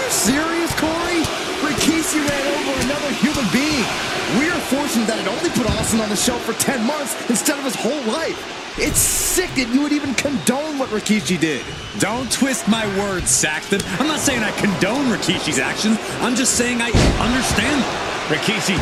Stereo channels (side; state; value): both; identical; correlation 1.00